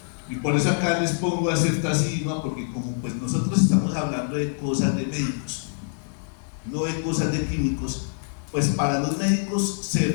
Y por eso acá les pongo a ceftazidima, porque como pues nosotros estamos hablando de cosas de médicos, no de cosas de químicos, pues para los médicos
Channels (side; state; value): right; silent; digital silence